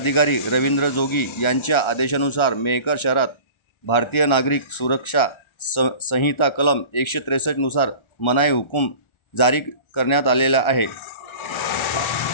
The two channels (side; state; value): right; late; 1.4 ms